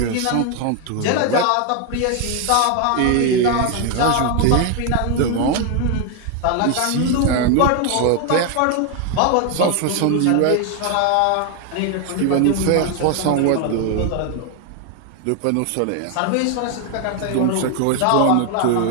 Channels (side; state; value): both; different; correlation 0.01